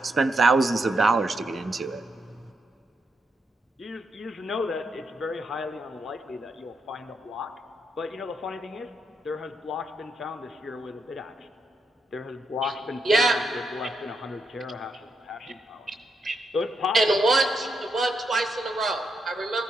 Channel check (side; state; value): both; normal; correlation 0.81